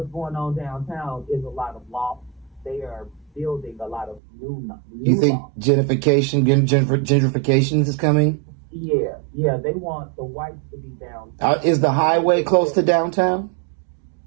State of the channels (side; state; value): left; drops out; at 4.2 s